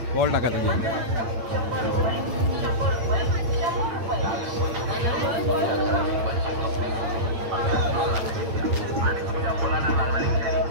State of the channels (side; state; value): left; late; 8.8 ms